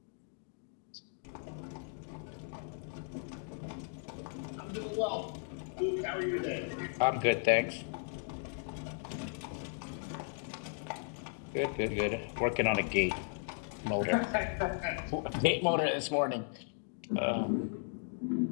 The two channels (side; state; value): right; silent; 54 dB below the other